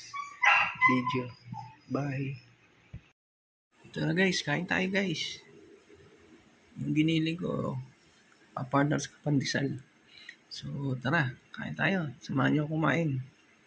video. Bye. Ito na guys, kain tayo guys. Yung ginili ko, pa-partners ka pandesal. So tara, kain tayo. Samahan niyo kumain.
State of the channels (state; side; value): identical; both; correlation 1.00